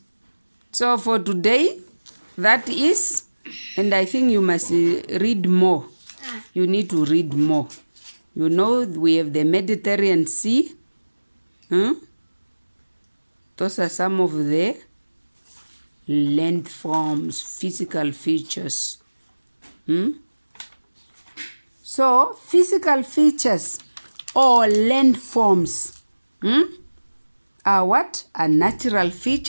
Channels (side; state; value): both; inverted; correlation -1.00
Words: So for today, that is, and I think you must read more. You need to read more. You know, we have the Mediterranean Sea. Those are some of the landforms, physical features. So, physical features or landforms are what? Are natural